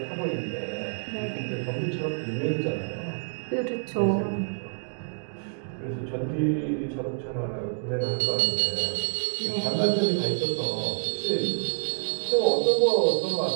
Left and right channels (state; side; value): silent; left; digital silence